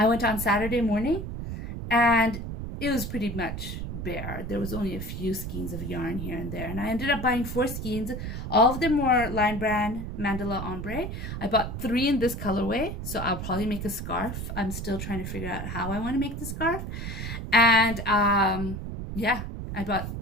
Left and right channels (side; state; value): right; noise; rumble, 6 dB below the sound